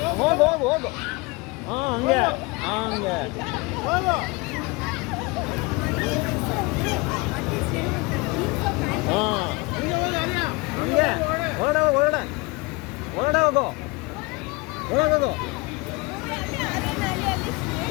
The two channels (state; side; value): quieter; right; 25.7 dB